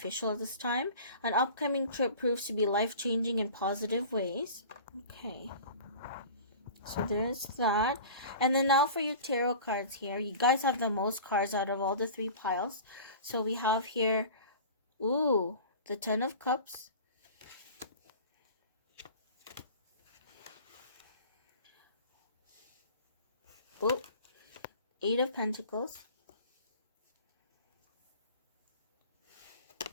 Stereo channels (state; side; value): inverted; both; correlation -0.40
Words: at this time. An upcoming trip proves to be life-changing in positive ways. Okay. So there's that. And then now for your tarot cards here. You guys have the most cards out of all the 3 piles. So we have here, ooh, the 10 of Cups. Oh, 8 of Pentacles.